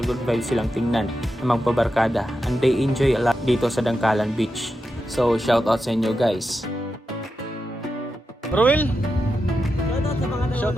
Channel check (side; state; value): both; normal; correlation 0.88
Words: vibes silang tingnan na magpabarkada, and they enjoy a lot dito sa Dangkalan Beach. So shoutout sa inyo guys. Ruel, Shoutout sa mga